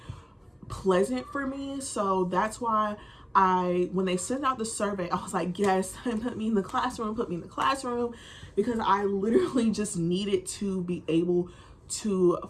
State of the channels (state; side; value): identical; both; correlation 1.00